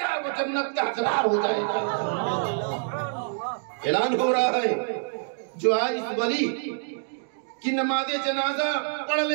گا وہ جنت کا حقدار ہو جائے گا۔ اعلان ہو رہا ہے جو آج اس ولی کی نماز جنازہ پڑھ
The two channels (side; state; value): left; silent; digital silence